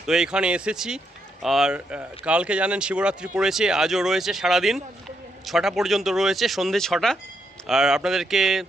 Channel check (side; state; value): both; normal; correlation 0.79